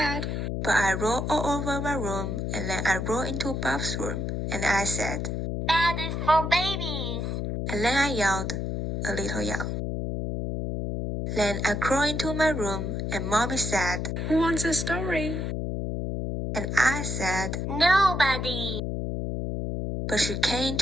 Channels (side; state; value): left; noise; hum, 2 dB below the sound